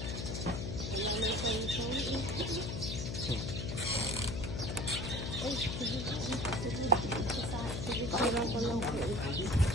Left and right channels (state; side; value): noise; left; hum, 3 dB below the sound